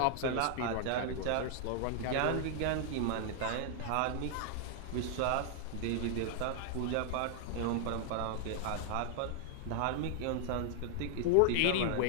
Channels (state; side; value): different; both; correlation 0.00